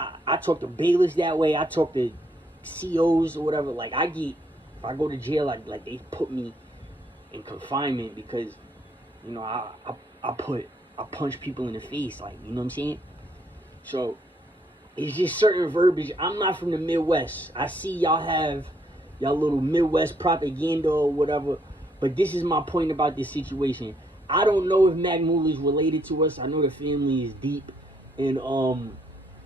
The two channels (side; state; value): both; normal; correlation 0.71